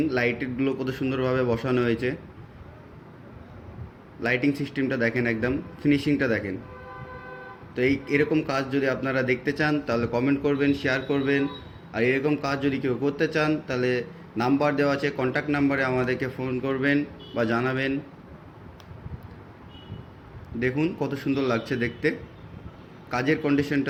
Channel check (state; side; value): identical; both; correlation 1.00